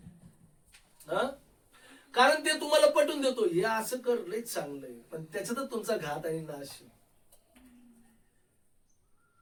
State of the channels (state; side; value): identical; both; correlation 1.00